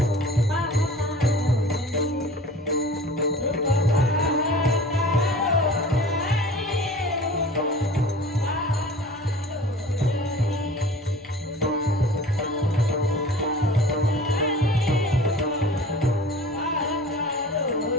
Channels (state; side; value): normal; both; correlation 0.42